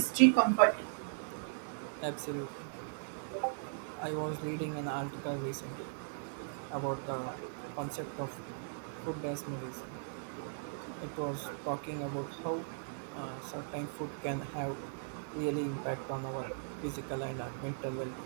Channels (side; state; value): left; silent; digital silence